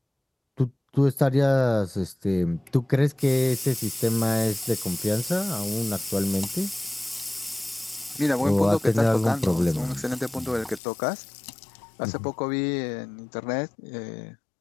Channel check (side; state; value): right; drops out; at 10.8 s